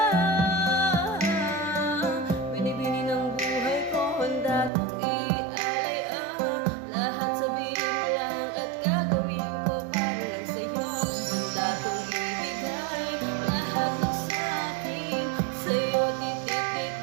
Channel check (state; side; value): drops out; left; at 4.7 s